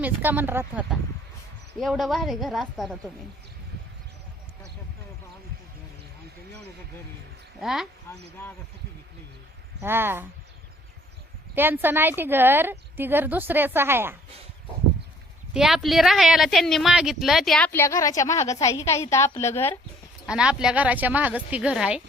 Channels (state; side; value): normal; both; correlation 0.59